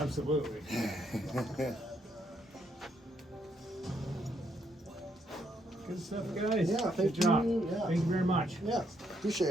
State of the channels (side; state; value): both; normal; correlation 0.74